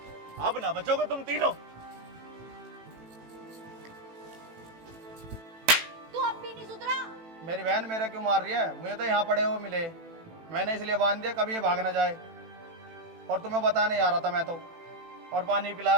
अब ना बचोगे तुम तीनों। तू अब भी नहीं सुधरा? मेरी बहन मेरा क्यों मार रही है? मुझे तो यहाँ पड़े हुए मिले, मैंने इसलिए बांध दिया कभी ये भाग ना जाए। और तुम्हें बताने आ रहा था मैं तो, और पानी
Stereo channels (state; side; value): late; left; 18 ms